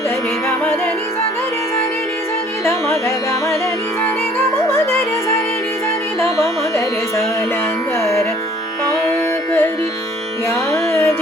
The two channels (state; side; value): normal; both; correlation 0.56